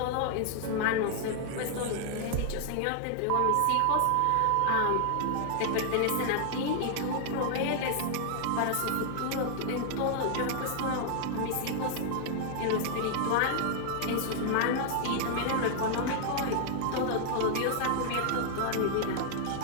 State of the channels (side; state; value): both; different; correlation 0.00